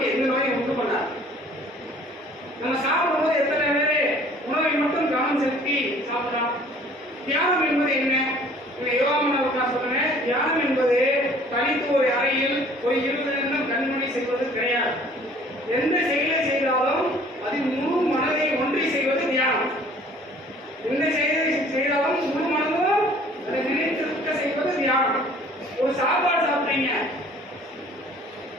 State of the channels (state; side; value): normal; both; correlation 0.53